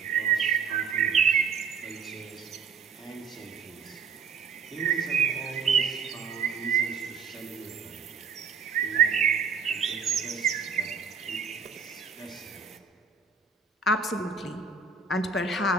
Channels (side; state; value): left; quieter; 5.8 dB